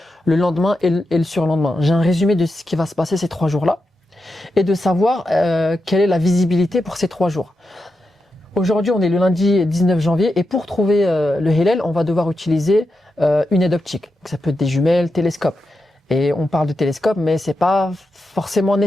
le lendemain et le surlendemain. J'ai un résumé de ce qui va se passer ces 3 jours-là et de savoir quelle est la visibilité pour ces 3 jours. Aujourd'hui, on est le lundi 19 janvier et pour trouver le Hillel, on va devoir utiliser une aide optique. Donc, ça peut être des jumelles, télescopes. Et on parle de télescope, mais c'est pas forcément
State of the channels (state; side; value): normal; both; correlation 0.87